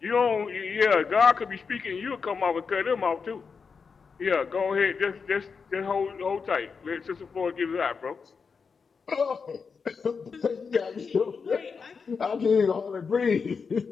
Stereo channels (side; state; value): right; quieter; 5.4 dB